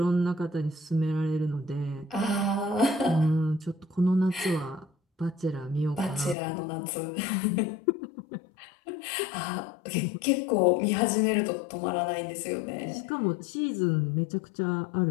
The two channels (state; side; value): drops out; right; at 6.4 s